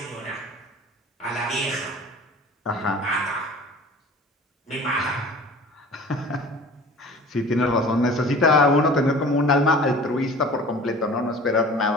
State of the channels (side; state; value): both; normal; correlation 0.43